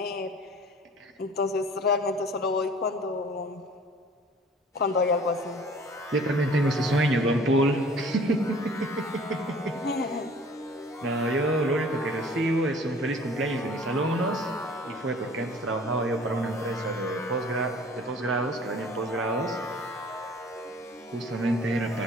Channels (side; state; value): both; normal; correlation 0.50